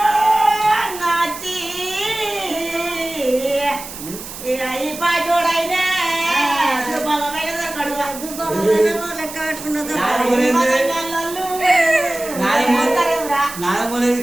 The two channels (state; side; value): noise; right; hiss, 12 dB below the sound